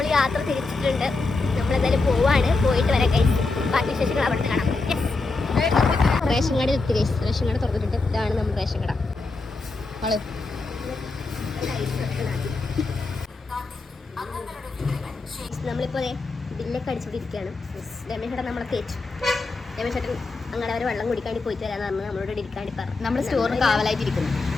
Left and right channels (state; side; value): quieter; right; 3.7 dB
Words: യാത്ര തിരിച്ചിട്ടുണ്ട്. നമ്മളെന്തായാലും പോവാണ്. പോയിട്ട് വരാം ഗൈസ്. ബാക്കി വിശേഷങ്ങൾ അവിടെ കാണാം. റേഷൻ കടയിൽ എത്തി ഗൈസ്. റേഷൻ കട തുറന്നിട്ടുണ്ട്. ഇതാണ് നമ്മൾ റേഷൻ കട. നമ്മളിപ്പോൾ ബില്ലൊക്കെ അടിച്ചുകൊണ്ടിരിക്കുകയാണ്. രമേശേട്ടൻ നമ്മളെ തേച്ചു. രമേശേട്ടൻ അങ്ങനെ അവർ വെള്ളം കുടിക്കാണ്ടി പോയിട്ട് വരാമെന്ന് പറഞ്ഞ് നമ്മളോട് ഇരിക്കാണ്ടി പറഞ്ഞു. നമ്മൾ സ്റ്റോറിന് കാവലായിട്ടിരിക്കുന്നു.